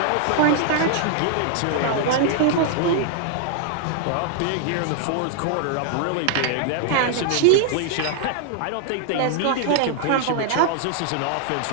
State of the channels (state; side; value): different; both; correlation 0.00